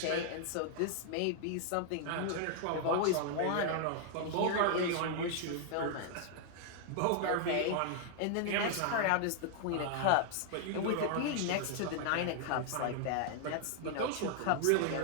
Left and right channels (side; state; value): both; different; correlation -0.01